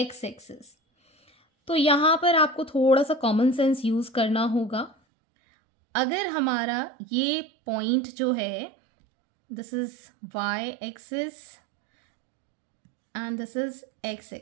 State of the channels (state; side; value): drops out; left; at 5.0 s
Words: axis. तो यहाँ पर आपको थोड़ा सा कॉमन सेंस यूज़ करना होगा. अगर हमारा ये पॉइंट जो है this is y axis and this is x